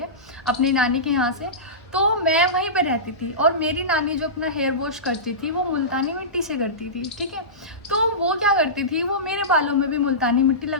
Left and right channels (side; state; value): both; normal; correlation -0.19